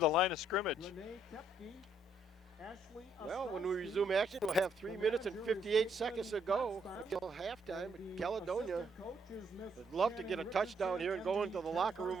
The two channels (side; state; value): both; normal; correlation 0.71